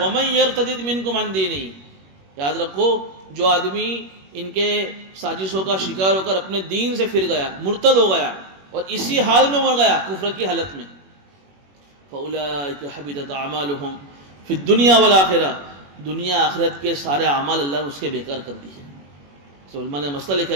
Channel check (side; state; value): left; late; 21 ms